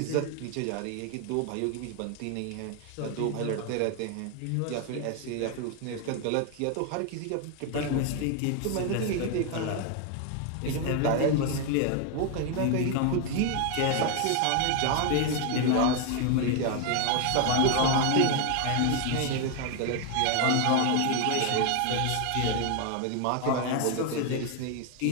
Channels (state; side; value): different; both; correlation 0.01